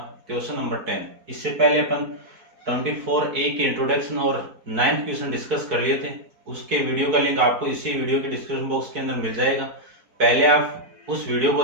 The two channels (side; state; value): left; late; 4.6 ms